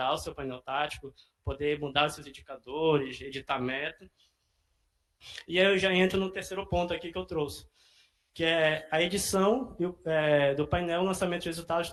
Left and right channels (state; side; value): identical; both; correlation 1.00